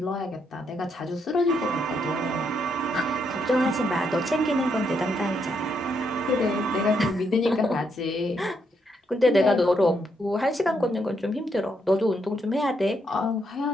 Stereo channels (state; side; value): normal; both; correlation 0.77